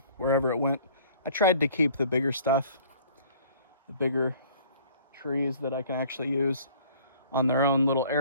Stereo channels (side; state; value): both; inverted; correlation -0.53